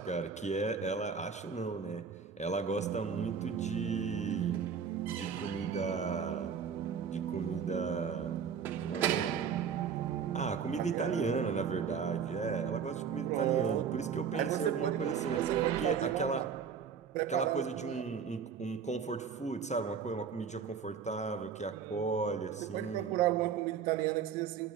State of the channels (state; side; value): quieter; left; 6.8 dB